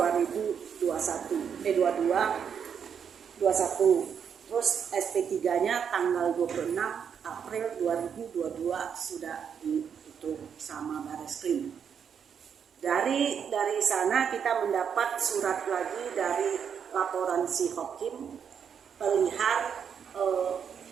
terus SP3-nya tanggal 26 April 2022 sudah ditutup sama Bareskrim. Dari sana kita mendapat surat lagi dari laporan si Hakim perihal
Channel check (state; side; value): quieter; left; 7.4 dB